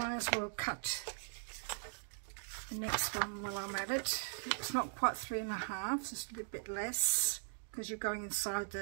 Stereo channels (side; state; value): left; silent; digital silence